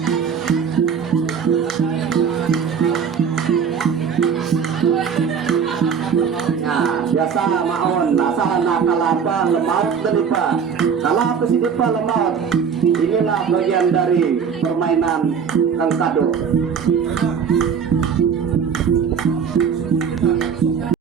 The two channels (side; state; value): left; quieter; 6.8 dB